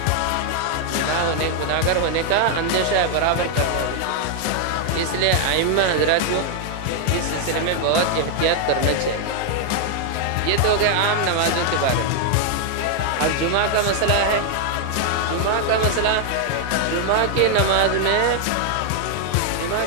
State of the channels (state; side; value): different; both; correlation 0.00